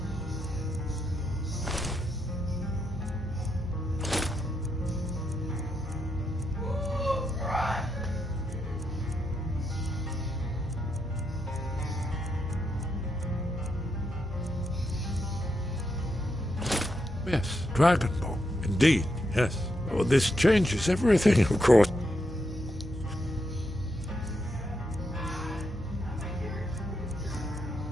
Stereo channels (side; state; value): both; normal; correlation 0.82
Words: Yes, Dragonborn. Indeed, yes. Oh, this changes everything, of course.